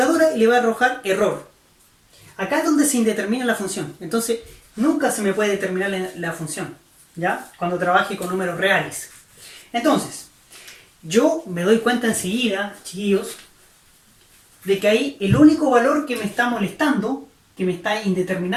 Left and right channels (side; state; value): both; identical; correlation 1.00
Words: y le va a arrojar error. Acá es donde se indetermina la función. Entonces, nunca se me puede determinar la función, ¿ya? Cuando trabaje con números reales. Entonces, yo me doy cuenta enseguida, chiquillos, de que ahí el único valor que me está molestando, que me está